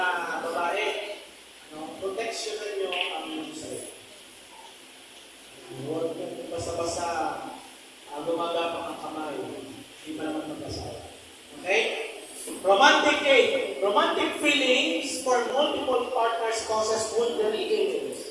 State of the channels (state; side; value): identical; both; correlation 1.00